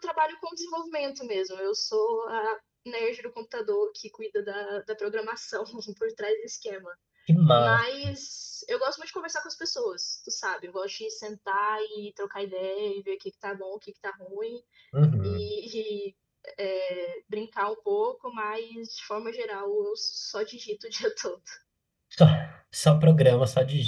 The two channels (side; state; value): both; identical; correlation 1.00